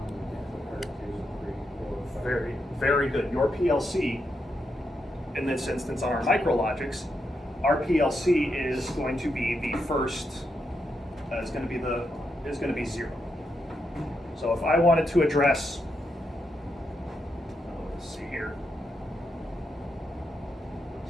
and input card two, three, four, five. Very, very good. Your PLC, in this instance on our micrologics, our PLC is going to be the first, is going to be 0. So if I wanted to address, let's see here.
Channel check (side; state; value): both; normal; correlation 0.83